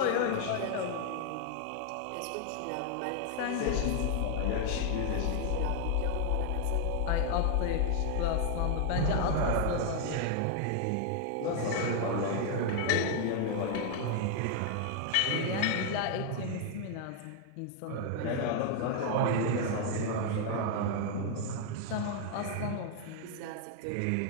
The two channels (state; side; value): different; both; correlation 0.00